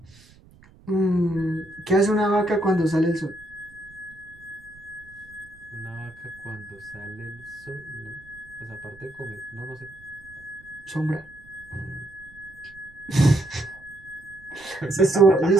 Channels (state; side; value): noise; right; rumble, 25 dB below the sound